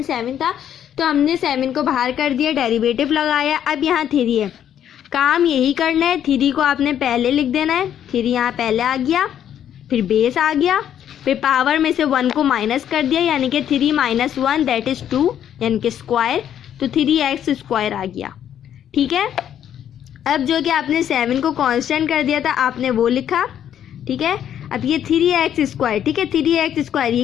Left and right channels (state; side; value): quieter; right; 10.0 dB